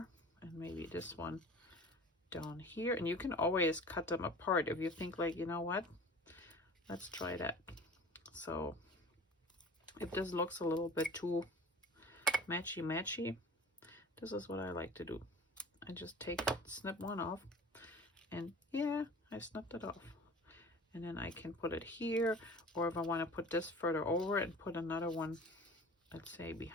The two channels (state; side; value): normal; both; correlation 0.42